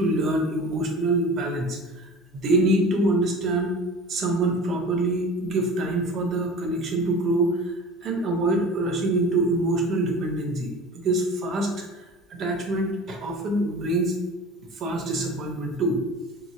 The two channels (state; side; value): normal; both; correlation 0.37